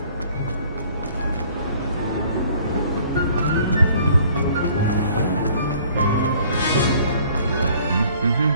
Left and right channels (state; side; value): inverted; both; correlation -0.56